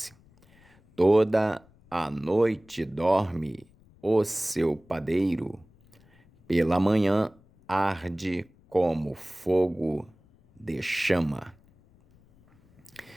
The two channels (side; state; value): left; noise; rumble, 29 dB below the sound